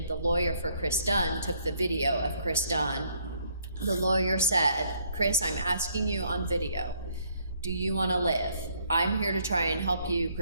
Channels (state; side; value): inverted; both; correlation -0.67